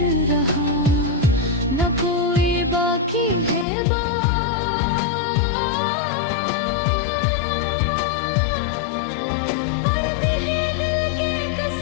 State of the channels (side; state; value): right; drops out; at 3.7 s